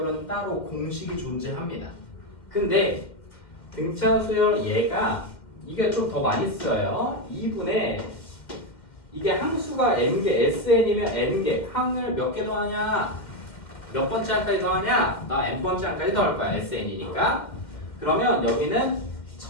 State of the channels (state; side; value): late; right; 2.1 ms